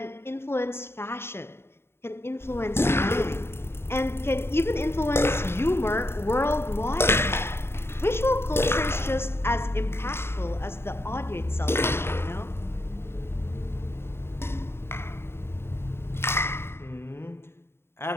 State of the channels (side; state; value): right; late; 0.12 ms